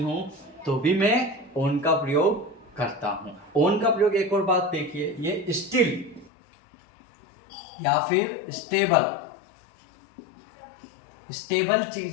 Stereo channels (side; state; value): right; drops out; at 6.3 s